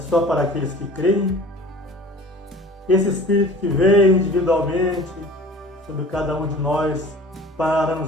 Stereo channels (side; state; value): both; normal; correlation 0.43